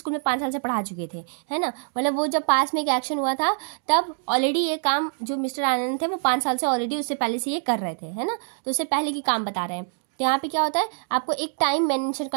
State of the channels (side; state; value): left; silent; 62 dB below the other